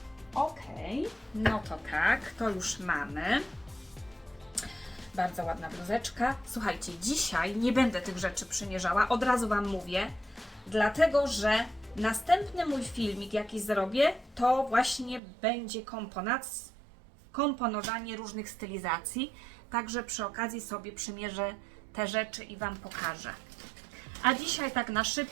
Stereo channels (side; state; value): left; drops out; at 15.2 s